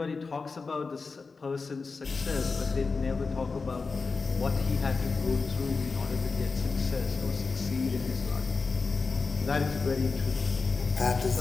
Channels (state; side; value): quieter; right; 4.4 dB